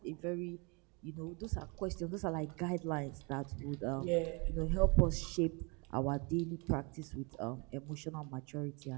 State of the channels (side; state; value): left; quieter; 31.2 dB